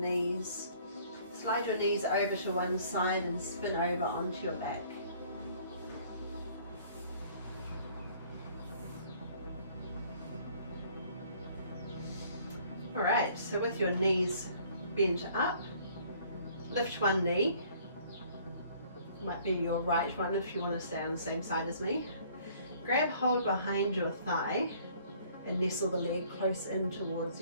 Slide your knees over to one side and spin over onto your back. Alright, so with your knees bent up, lift one knee. Might be your right one if you want to stay on the same side as me. Grab hold behind your thigh and nestle the leg close in towards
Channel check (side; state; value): both; inverted; correlation -0.57